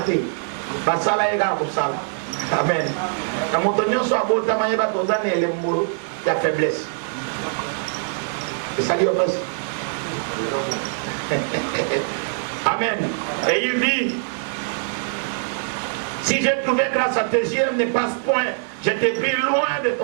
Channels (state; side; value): silent; left; 64 dB below the other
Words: Basala ega kusala. Amen. Na motonyo so abota mayeba tozana elembo ya faiblesse. Et ça dit au passé. Amen. Et il dit, si j'ai trouvé grâce à tes yeux, ne passe point, je t'ai pris loin de